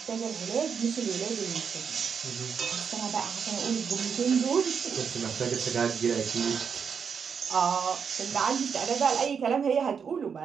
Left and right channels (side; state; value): left; quieter; 6.6 dB